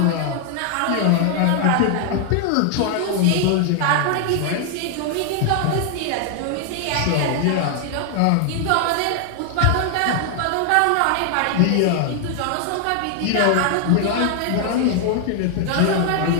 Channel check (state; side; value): different; both; correlation 0.00